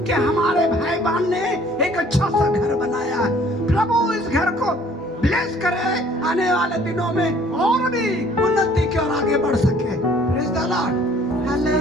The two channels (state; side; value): normal; both; correlation 0.56